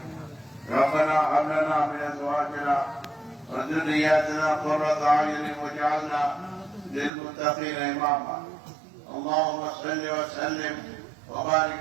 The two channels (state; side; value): drops out; left; at 7.1 s